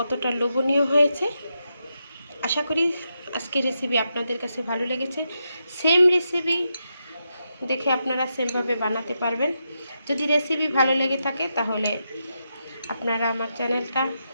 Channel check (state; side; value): inverted; both; correlation -0.85